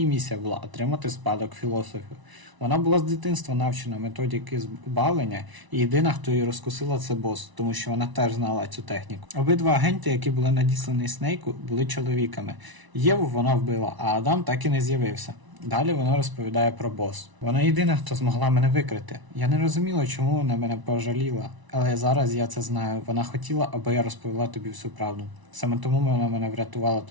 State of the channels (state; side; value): late; left; 1.0 ms